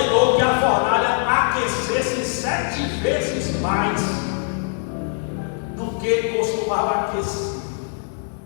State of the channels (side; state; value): right; silent; 56 dB below the other